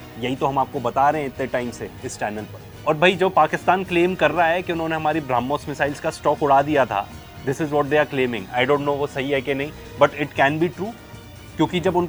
यही तो हम आपको बता रहे हैं इतने टाइम से इस चैनल पर। और भाई जो पाकिस्तान क्लेम कर रहा है कि उन्होंने हमारी ब्रह्मोस मिसाइल्स का स्टॉक उड़ा दिया था, this is what they are claiming. I don't know वो सही है कि नहीं, but it can be true, क्योंकि जब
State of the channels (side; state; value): both; identical; correlation 1.00